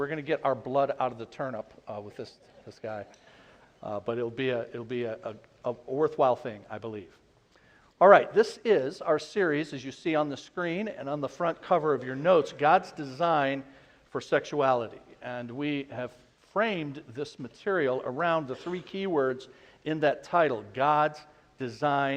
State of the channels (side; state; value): both; identical; correlation 1.00